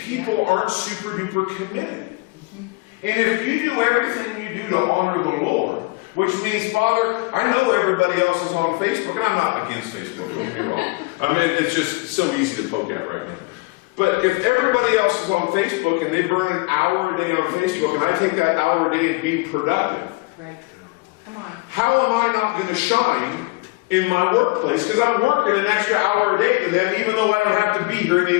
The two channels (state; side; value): quieter; right; 24.9 dB